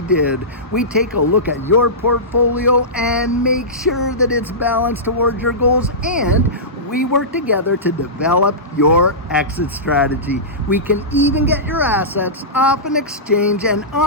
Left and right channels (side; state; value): both; normal; correlation -0.18